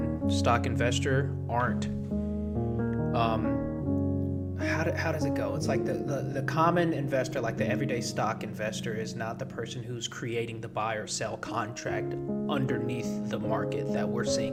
stock investor aren't. How does it go? It's like the common investor, like the everyday stock investor, is not the person who's creating the buy or sell contract underneath the market that we're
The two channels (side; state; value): both; identical; correlation 1.00